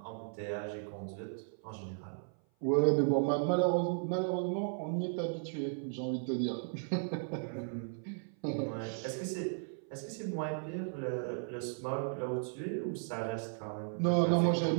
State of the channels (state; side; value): silent; left; 54 dB below the other